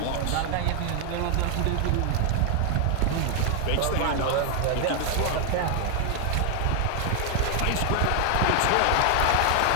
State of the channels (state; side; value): different; both; correlation 0.00